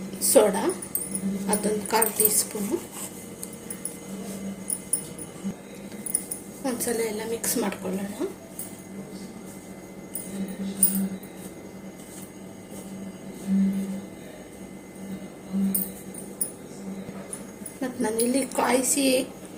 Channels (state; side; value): identical; both; correlation 1.00